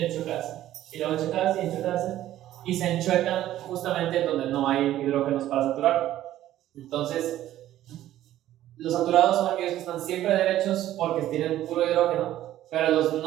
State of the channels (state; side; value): quieter; left; 13.3 dB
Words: y luego enchuecarse y enchuecarse, y se enchuecan justamente donde no hay hidrógenos para saturar. Entonces, los saturados son aquellos que están siempre derechos porque tienen puro hidrógeno, pero los